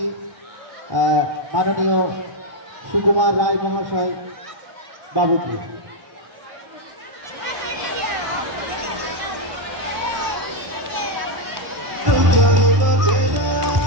মাননীয় সুকুমার রায় মহাশয় বাবুকে।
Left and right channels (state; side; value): late; left; 1.4 ms